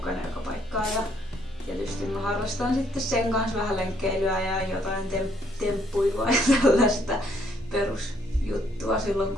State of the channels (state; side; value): normal; both; correlation 0.68